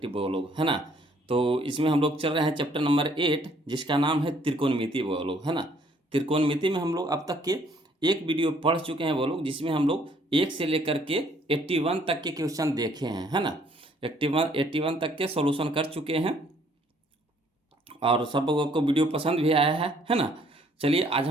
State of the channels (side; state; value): both; normal; correlation 0.63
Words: बगो लोग, है ना। तो इसमें हम लोग चल रहे हैं चैप्टर नंबर 8, जिसका नाम है त्रिकोणमिति बगो लोग, है ना। त्रिकोणमिति में हम लोग अब तक के एक वीडियो पढ़ चुके हैं वो लोग, जिसमें हम लोग 1 से लेकर के 81 तक के क्वेश्चन देखे हैं, है ना। 81 तक के सॉल्यूशन कर चुके हैं और सब लोगों को वीडियो पसंद भी आया है ना। चलिए आज